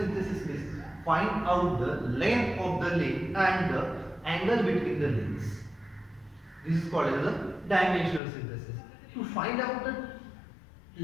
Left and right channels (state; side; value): drops out; right; at 8.2 s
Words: means find out the length of the link and the angle between the links. This is called as a dimensional synthesis. To find out the